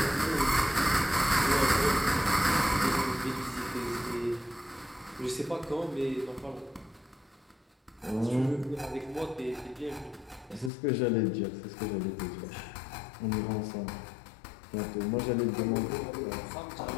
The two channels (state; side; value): drops out; right; at 10.7 s